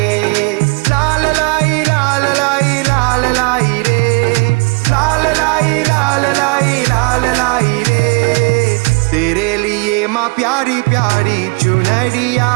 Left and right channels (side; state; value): left; quieter; 30.4 dB